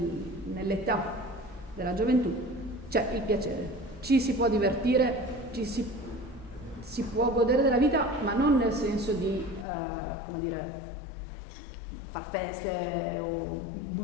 della gioventù c'è il piacere, ci si può divertire, si può godere della vita, ma non nel senso di, come dire, far feste o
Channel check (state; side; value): drops out; right; at 9.7 s